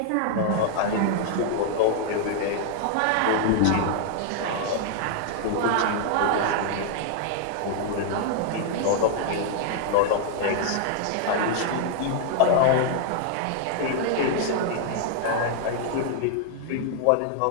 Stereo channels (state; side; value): different; both; correlation 0.00